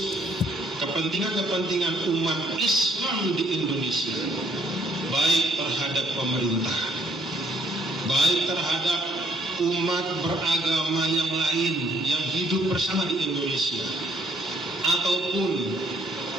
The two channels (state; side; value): normal; both; correlation 0.66